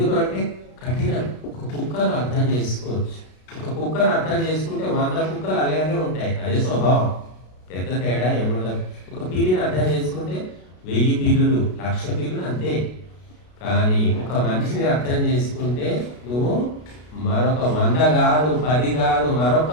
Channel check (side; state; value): right; late; 33 ms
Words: కఠినం. ఒక కుక్కను అర్థం చేసుకోవచ్చు. ఒక కుక్కను అర్థం చేసుకుంటే 100 కుక్కలు అలాగే ఉంటాయి, అదే స్వభావం, పెద్ద తేడా ఏముండదు. ఒక పిల్లిని అర్థం చేసుకుంటే 1000 పిల్లులు, 1,00,000 పిల్లులు అంతే. కానీ ఒక మనిషిని అర్థం చేసుకుంటే నువ్వు మరొక 100 కాదు, 10 కాదు, మరొక